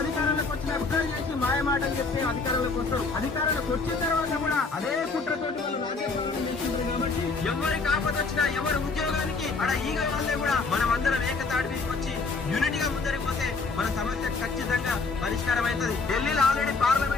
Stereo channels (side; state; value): right; quieter; 4.1 dB